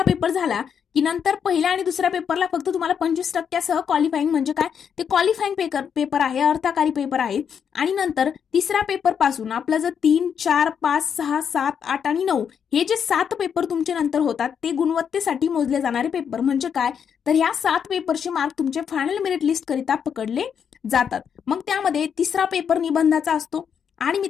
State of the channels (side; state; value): right; quieter; 7.5 dB